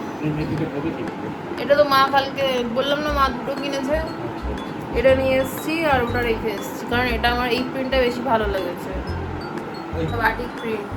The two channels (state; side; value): identical; both; correlation 1.00